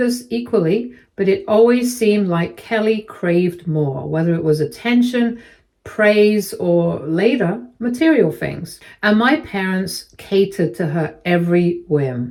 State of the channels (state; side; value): identical; both; correlation 1.00